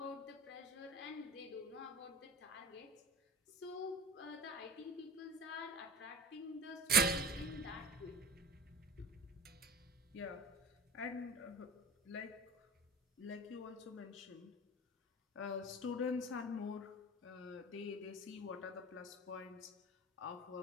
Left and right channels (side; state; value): both; normal; correlation 0.35